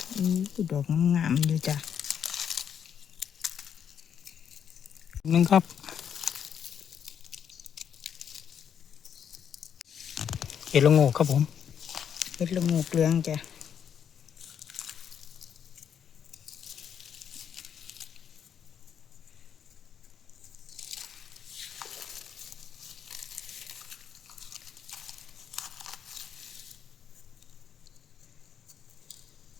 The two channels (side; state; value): right; quieter; 8.3 dB